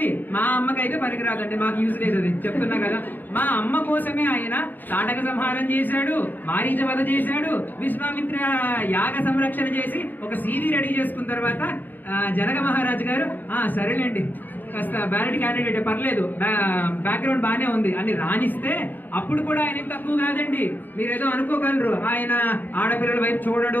మా అమ్మకైతే పనికి రాదండి, మాకు యూజ్ లేదు. అది చెప్తున్నా కదా. మా అమ్మ కోసమే ఆయన తాటక సంహారం చేశాడు, మారీచ వధ చేశాడు, విశ్వామిత్ర యాగ సంరక్షణ చేసి ఒక సీవీ రెడీ చేసుకున్న తర్వాత జనక మహారాజు గారు సరేలేండి కాస్త బ్యాలెట్ క్యాండిడేట్ పర్లేదు, బ్యాక్గ్రౌండ్ బాగానే ఉంది అని రాణిస్తే అప్పుడు కూడా ఆయన తక్కువ కాదండి. మీరేదో అనుకోగలరు ఆయన ఆడపిల్లల వైపు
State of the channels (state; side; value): late; right; 0.089 ms